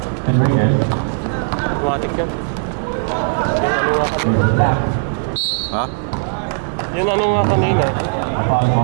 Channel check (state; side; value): silent; left; digital silence